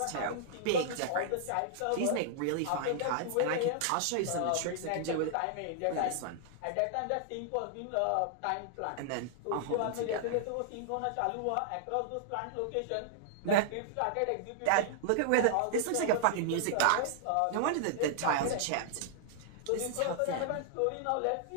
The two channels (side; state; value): both; different; correlation -0.01